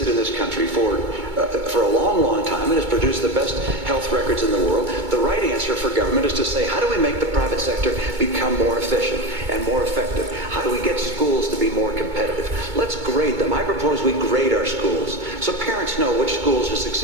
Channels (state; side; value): late; left; 2.2 ms